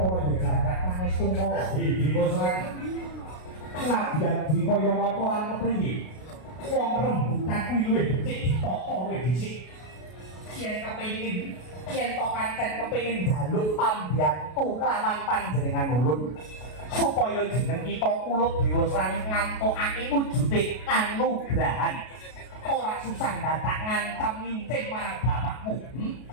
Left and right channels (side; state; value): right; late; 33 ms